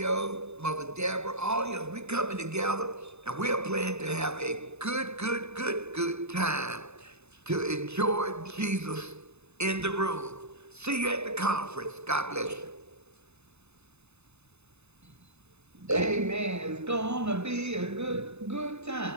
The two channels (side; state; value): left; late; 0.81 ms